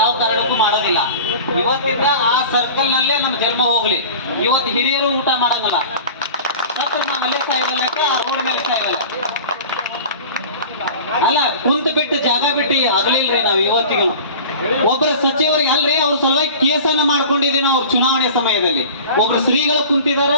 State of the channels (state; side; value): inverted; both; correlation -0.38